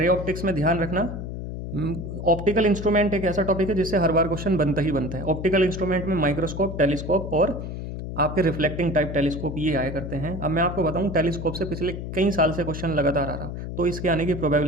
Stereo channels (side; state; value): left; noise; hum, 7 dB below the sound